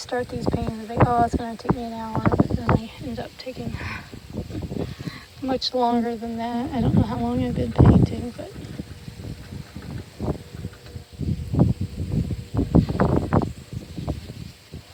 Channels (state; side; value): identical; both; correlation 1.00